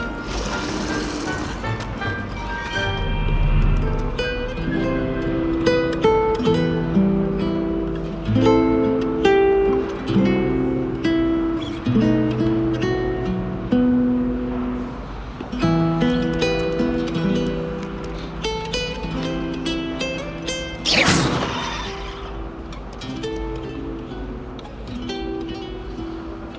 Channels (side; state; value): both; identical; correlation 1.00